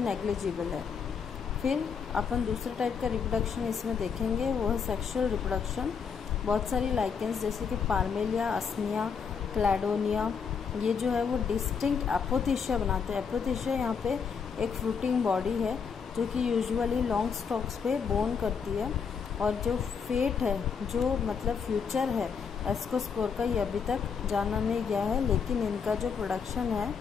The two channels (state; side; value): quieter; right; 6.2 dB